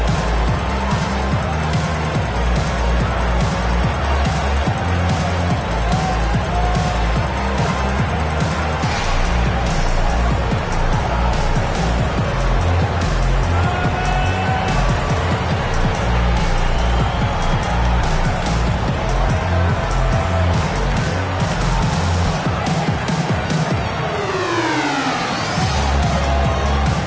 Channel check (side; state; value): both; identical; correlation 1.00